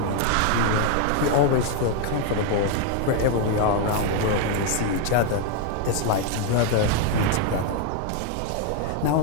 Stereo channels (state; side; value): different; both; correlation 0.01